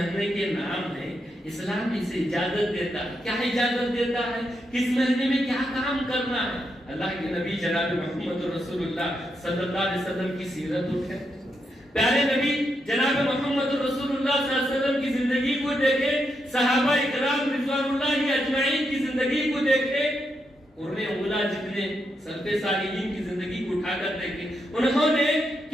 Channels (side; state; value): both; normal; correlation 0.82